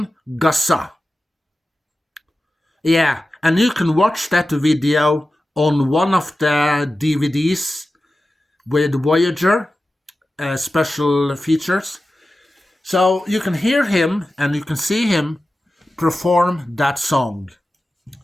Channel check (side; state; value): both; normal; correlation 0.94